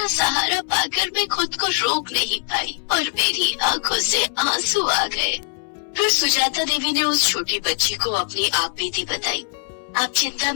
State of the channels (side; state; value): right; silent; 64 dB below the other